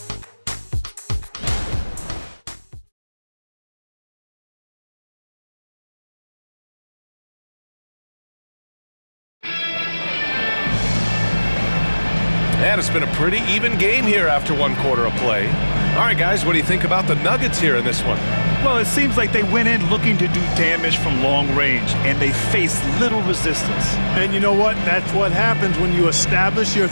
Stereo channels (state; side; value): inverted; both; correlation -1.00